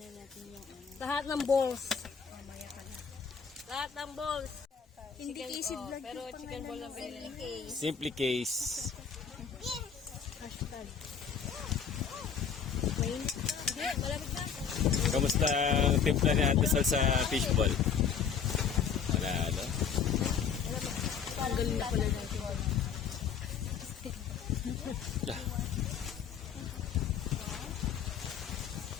natin yung lahat ng balls. Lahat ng balls. Hindi easy vlog. Pero chicken ball lang pinili. Simply case. Hashtag. Wait. Hindi, malamig na. Kamusta ang timpla ni Ate Sol sa fishball? Wala, ano? Ang galing na pala natin. Yeah.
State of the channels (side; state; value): right; quieter; 7.0 dB